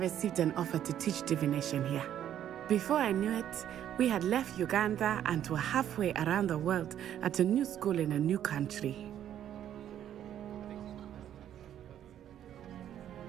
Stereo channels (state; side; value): quieter; left; 10.6 dB